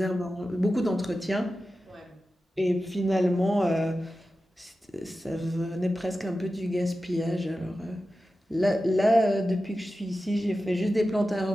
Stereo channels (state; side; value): normal; both; correlation 0.93